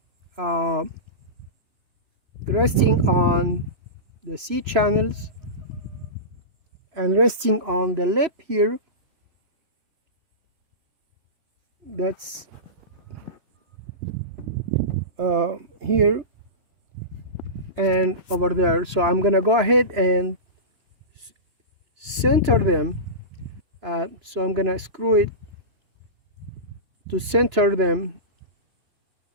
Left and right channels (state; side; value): late; left; 3.0 ms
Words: resting on the C channels, and resting on the lip here, that's here and over there. So I'm gonna go ahead and center them. So I'm gonna screw it to center them